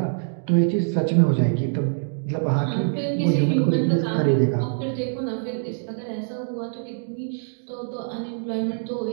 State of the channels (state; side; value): silent; left; digital silence